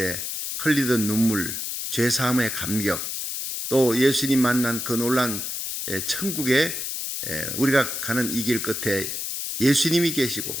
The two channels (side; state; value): left; noise; hiss, 4 dB below the sound